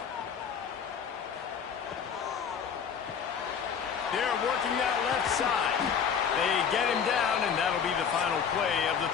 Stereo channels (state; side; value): quieter; right; 7.1 dB